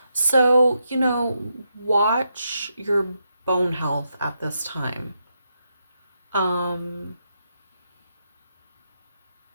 So, you know, watch your bone health at this time.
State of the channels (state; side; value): inverted; both; correlation -0.83